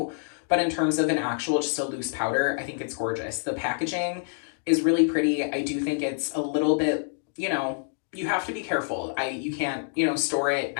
But in terms of an actual, just a loose powder, I think it's gorgeous. The packaging is really pretty. I do think it's a little bit, you know, you have to be careful. You can't, you know, store it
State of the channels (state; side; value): silent; right; digital silence